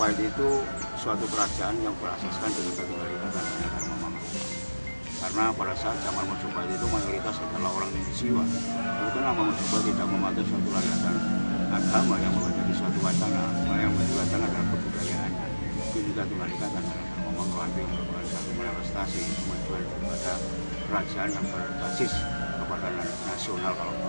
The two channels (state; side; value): inverted; both; correlation -1.00